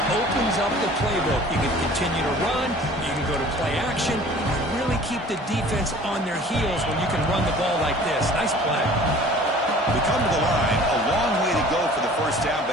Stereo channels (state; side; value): normal; both; correlation 0.47